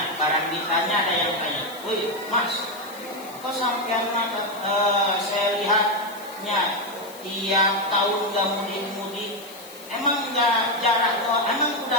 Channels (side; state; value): left; noise; hiss, 18 dB below the sound